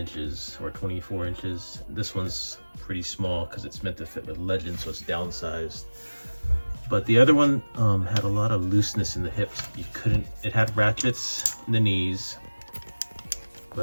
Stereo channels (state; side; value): inverted; both; correlation -1.00